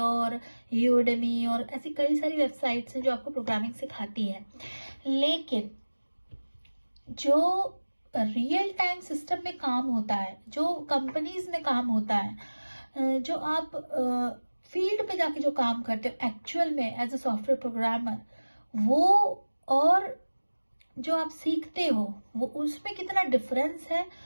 यूडेमी और ऐसी कई सारी वेबसाइट्स हैं जो आपको प्रोग्रामिंग सिखाती है। लेकिन जो रियल टाइम सिस्टम में काम होता है, जो कंपनीज में काम होता है, जो आप फील्ड पे जाके जो काम करते हो एक्चुअल में एज अ सॉफ्टवेयर प्रोग्रामर, वो और जो आप सीखते हो वो उसमें कितना डिफरेंस है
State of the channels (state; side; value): inverted; both; correlation -1.00